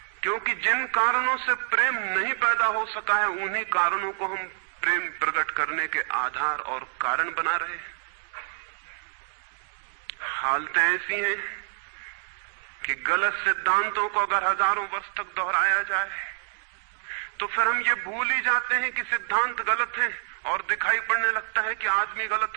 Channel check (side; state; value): left; silent; 60 dB below the other